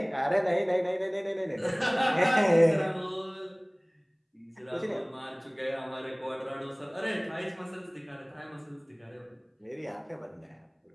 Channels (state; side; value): identical; both; correlation 1.00